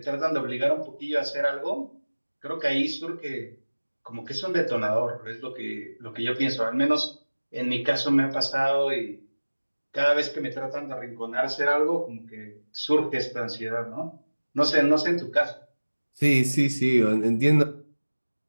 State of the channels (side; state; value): both; inverted; correlation -1.00